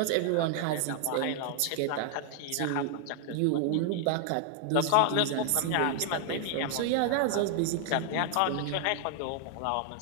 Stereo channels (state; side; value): different; both; correlation 0.00